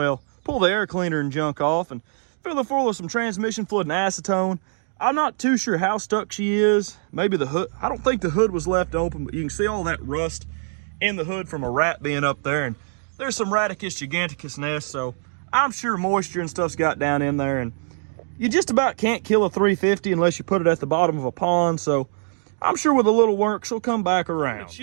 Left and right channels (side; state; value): left; silent; digital silence